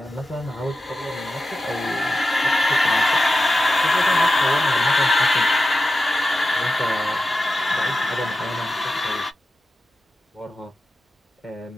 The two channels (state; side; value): normal; both; correlation 0.92